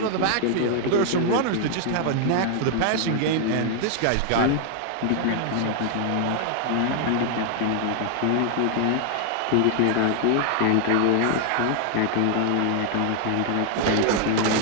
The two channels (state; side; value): different; both; correlation 0.00